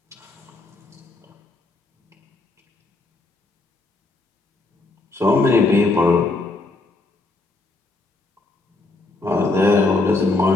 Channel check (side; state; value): right; quieter; 3.2 dB